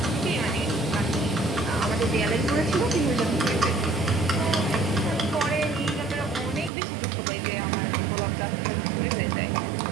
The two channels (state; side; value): drops out; left; at 6.7 s